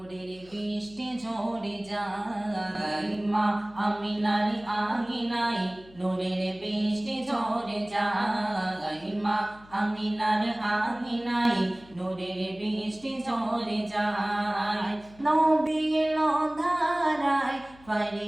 বৃষ্টি ঝরে যায়, মা আমিনার আঙিনায় নূরের বৃষ্টি ঝরে যায়, মা আমিনার আঙিনায় নূরের বৃষ্টি ঝরে যায়। নবী এলো ধারায়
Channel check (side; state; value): left; noise; hum, 24 dB below the sound